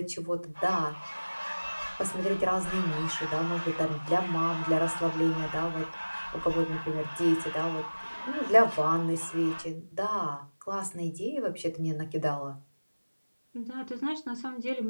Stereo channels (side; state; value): both; inverted; correlation -1.00